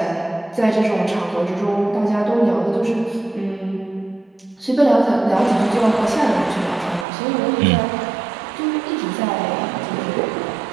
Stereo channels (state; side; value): drops out; left; at 7.1 s